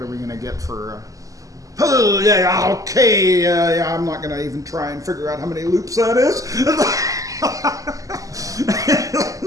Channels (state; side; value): late; left; 0.16 ms